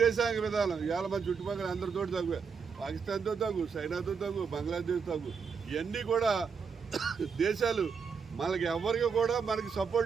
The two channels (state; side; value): quieter; left; 5.9 dB